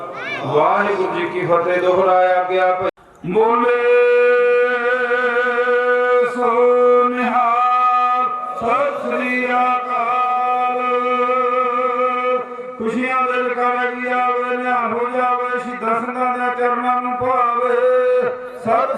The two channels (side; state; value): both; identical; correlation 1.00